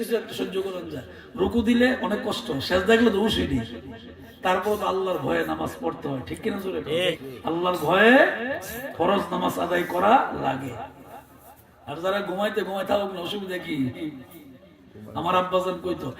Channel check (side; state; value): both; identical; correlation 1.00